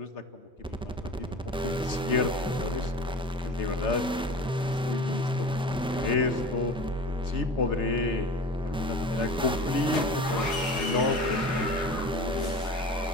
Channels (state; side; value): normal; both; correlation 0.37